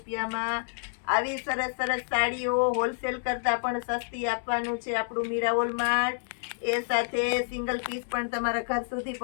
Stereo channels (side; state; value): right; silent; digital silence